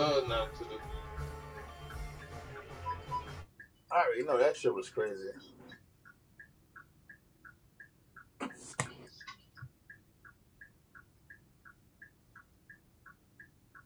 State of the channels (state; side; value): identical; both; correlation 1.00